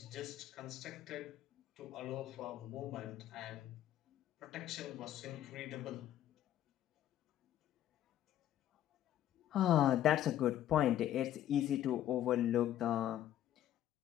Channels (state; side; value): quieter; right; 12.0 dB